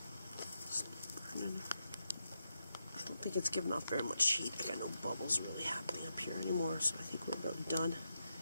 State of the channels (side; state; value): both; inverted; correlation -0.85